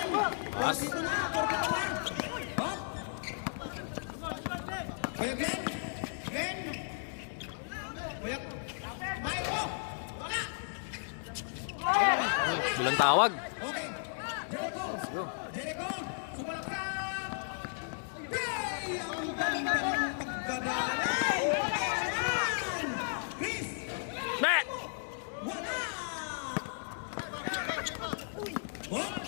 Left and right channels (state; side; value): silent; right; 55 dB below the other